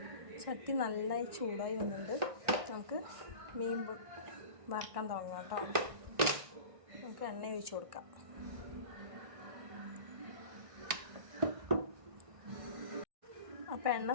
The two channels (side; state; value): left; late; 1.6 ms